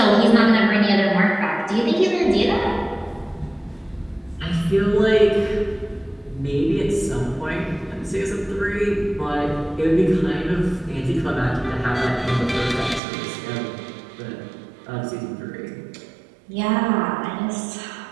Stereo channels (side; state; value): left; drops out; at 13.0 s